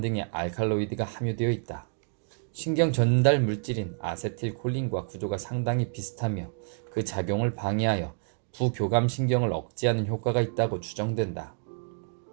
등의 알칼로이드가 함유되어 있다. 신경 전달 물질인 아세틸콜린과 구조가 상당히 비슷하며 그 작용을 방해하여 부교감 신경을 억제하는 효과가 있다고 추정된다.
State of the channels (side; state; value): left; silent; 59 dB below the other